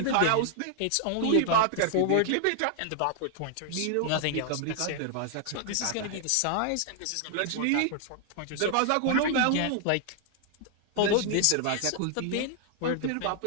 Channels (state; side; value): different; both; correlation 0.00